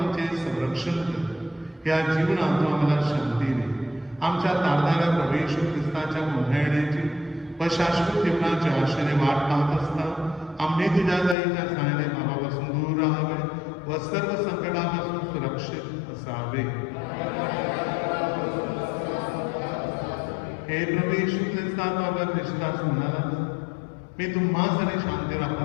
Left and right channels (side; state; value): right; drops out; at 11.4 s